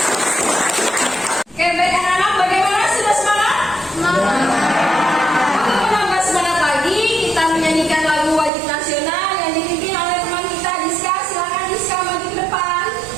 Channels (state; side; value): drops out; left; at 8.5 s